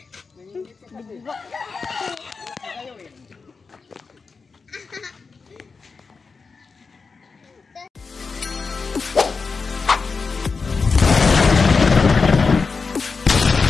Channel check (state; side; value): quieter; right; 4.7 dB